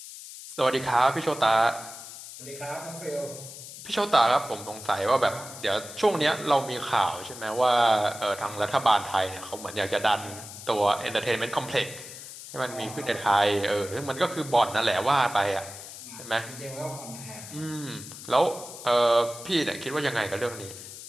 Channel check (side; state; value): left; noise; hiss, 13 dB below the sound